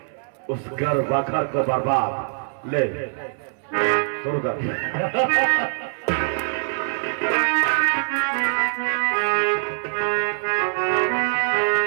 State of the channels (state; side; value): silent; left; 63 dB below the other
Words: उस घर बखर को बर्बाद ले शुरू कर।